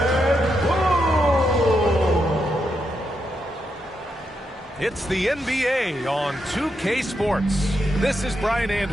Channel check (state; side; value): normal; both; correlation 0.83